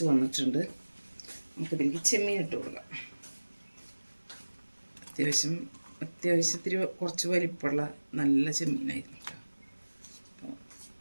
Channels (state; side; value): inverted; both; correlation -1.00